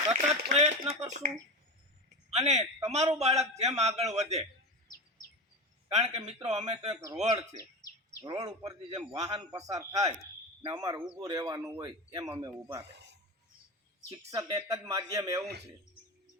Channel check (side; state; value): both; normal; correlation 0.23